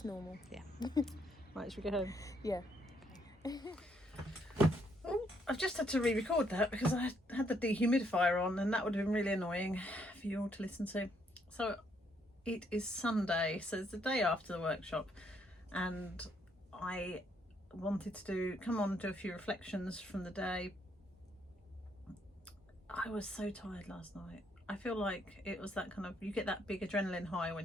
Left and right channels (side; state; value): both; normal; correlation 0.72